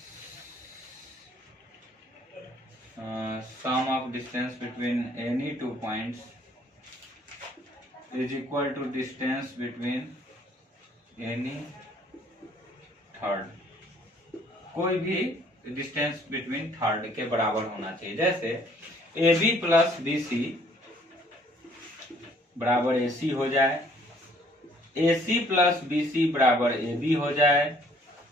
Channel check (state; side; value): normal; both; correlation 0.61